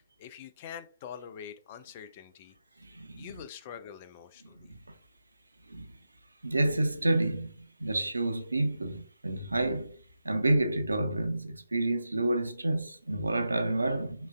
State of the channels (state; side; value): inverted; both; correlation -0.90